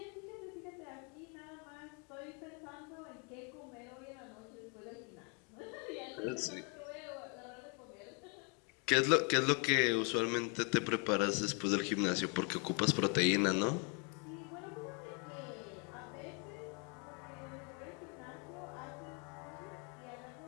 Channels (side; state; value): right; quieter; 35.2 dB